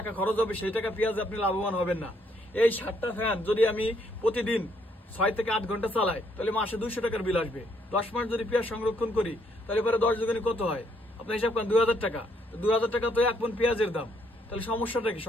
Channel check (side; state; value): both; normal; correlation 0.70